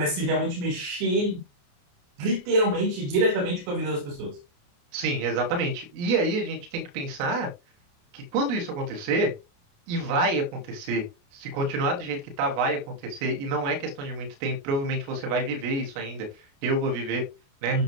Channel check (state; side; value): late; left; 28 ms